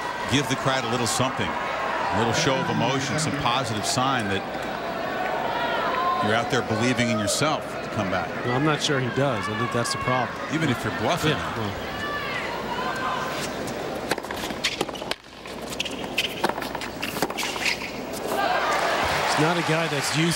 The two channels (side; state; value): both; identical; correlation 1.00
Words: give the crowd a little something, a little show of emotion, some positive sign that you're out there believing in yourself to come back. Well, I'm not sure he does. I think that's the problem. Even if you're bluffing. Yeah, well. Not a guy that's